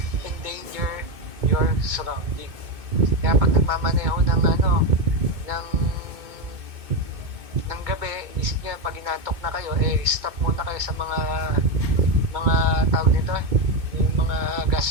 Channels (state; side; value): late; left; 2.2 ms